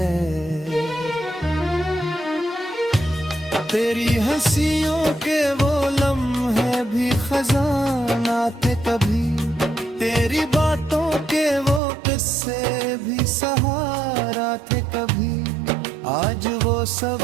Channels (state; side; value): drops out; left; at 11.8 s